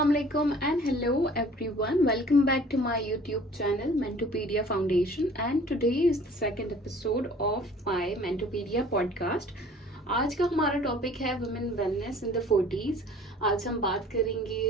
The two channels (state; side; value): normal; both; correlation 0.50